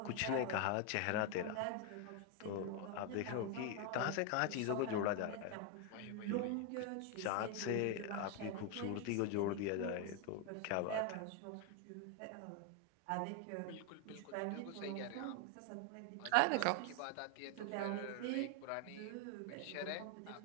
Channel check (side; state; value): both; different; correlation 0.01